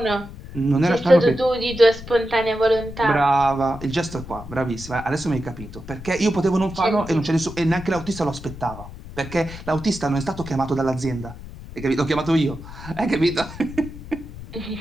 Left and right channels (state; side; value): noise; left; rumble, 13 dB below the sound